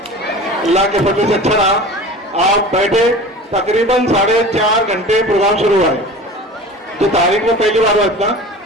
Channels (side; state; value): both; normal; correlation 0.38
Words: अल्लाह के फजल से अच्छा रहा। आप बैठे, तकरीबन 4.5 घंटे प्रोग्राम शुरू हुआ है, तो तारीख में पहली बार हुआ इतना,